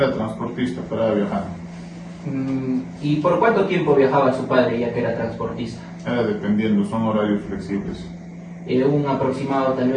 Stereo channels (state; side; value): identical; both; correlation 1.00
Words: transportista para viajar. ¿Y por cuánto tiempo viajaba su padre ya que era transportista? Era dependiendo, son horarios flexibles. ¿Un aproximado tal